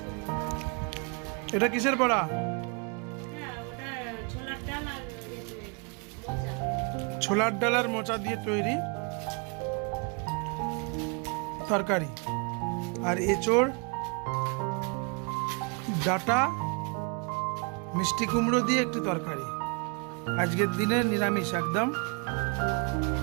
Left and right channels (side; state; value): left; quieter; 34.1 dB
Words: এটা কিসের বড়া? ছোলার ডাল আর মোচা দিয়ে তৈরি তরকারি, আর এঁচোড়, ডাটা, মিষ্টি কুমড়ো দিয়ে একটু তরকারি। আজকের দিনে নিরামিষ একদম।